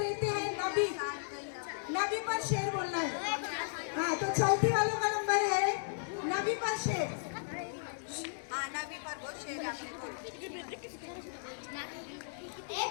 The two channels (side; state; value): right; silent; digital silence